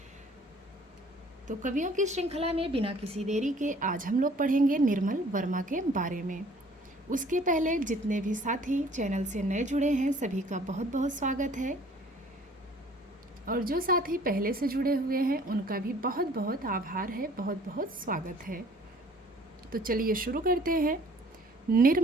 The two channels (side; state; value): both; normal; correlation 0.54